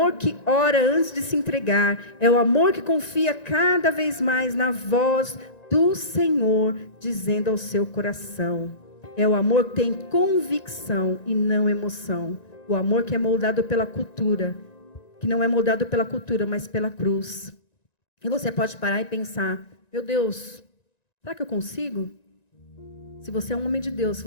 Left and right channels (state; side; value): late; right; 1.9 ms